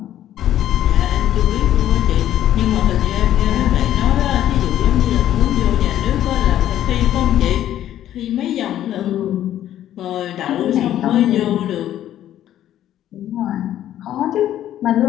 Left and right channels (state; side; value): quieter; right; 11.9 dB